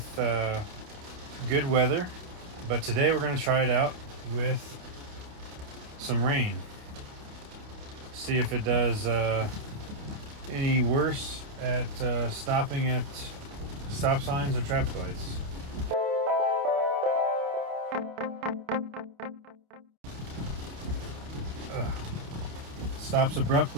good weather, but today we're going to try it out with some rain. See if it does any worse at stopping at stop signs or traffic lights. Stops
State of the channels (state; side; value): late; left; 29 ms